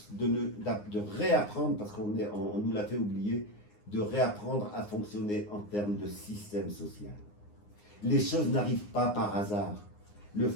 de réapprendre, parce qu'on nous l'a fait oublier, de réapprendre à fonctionner en termes de système social. Les choses n'arrivent pas par hasard.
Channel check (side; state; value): right; late; 9.7 ms